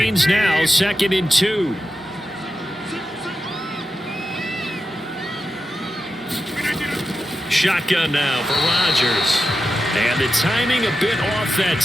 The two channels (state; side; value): normal; both; correlation 0.90